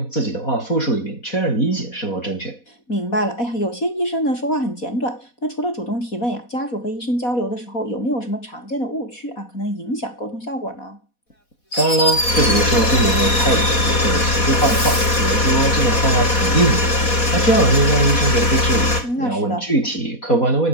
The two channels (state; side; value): late; right; 4.1 ms